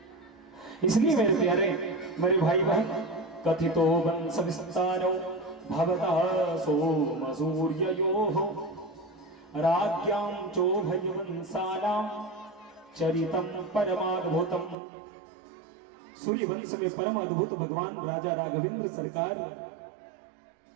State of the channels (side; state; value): left; drops out; at 14.8 s